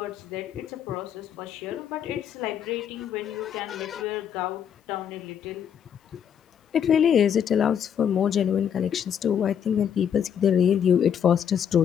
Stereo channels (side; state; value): right; quieter; 8.5 dB